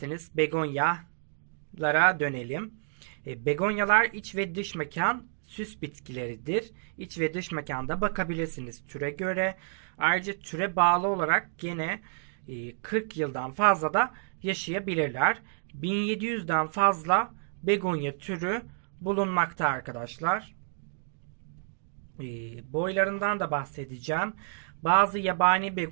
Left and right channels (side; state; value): left; silent; digital silence